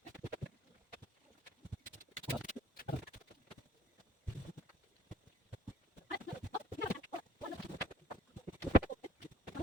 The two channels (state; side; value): normal; both; correlation 0.58